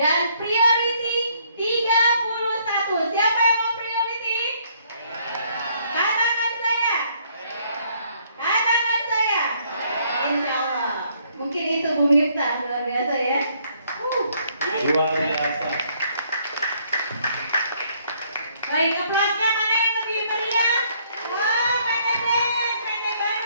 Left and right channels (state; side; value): inverted; both; correlation -0.66